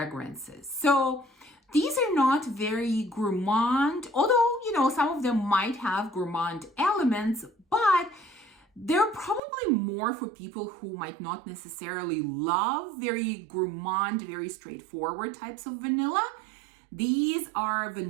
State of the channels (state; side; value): drops out; left; at 9.4 s